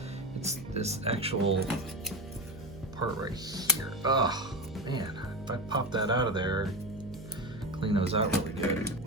It's this actual part right here. Oh man, if I pop that out of there, clean those out really good.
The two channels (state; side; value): noise; right; hum, 15 dB below the sound